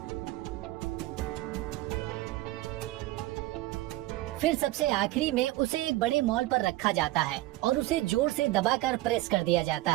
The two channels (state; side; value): quieter; left; 17.6 dB